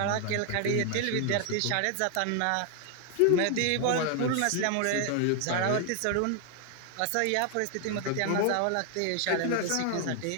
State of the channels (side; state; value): both; different; correlation 0.00